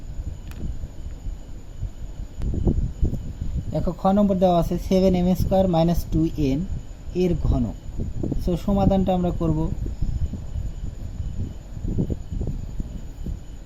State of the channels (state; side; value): identical; both; correlation 1.00